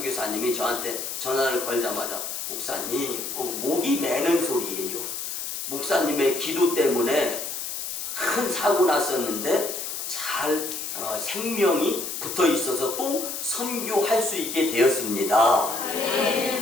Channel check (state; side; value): noise; left; hiss, 5 dB below the sound